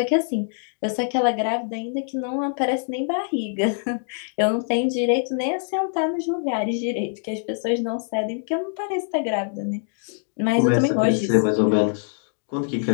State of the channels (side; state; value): right; silent; 59 dB below the other